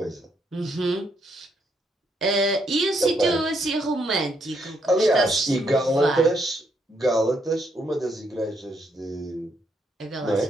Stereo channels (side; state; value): both; normal; correlation 0.74